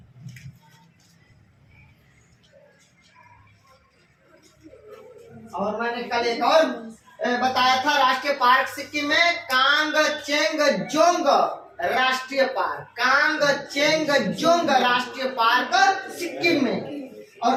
और मैंने कल एक और बताया था राष्ट्रीय पार्क सिक्किम में, कांगचेंगजोंग राष्ट्रीय पार्क, कांगचेंगजोंग राष्ट्रीय पार्क सिक्किम में। और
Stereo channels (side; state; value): both; identical; correlation 1.00